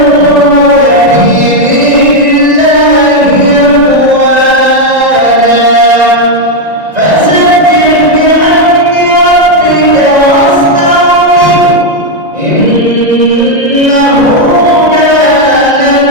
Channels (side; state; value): left; late; 1.9 ms